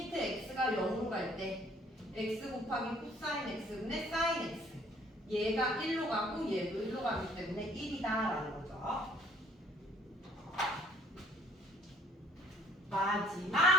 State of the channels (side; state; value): both; normal; correlation 0.59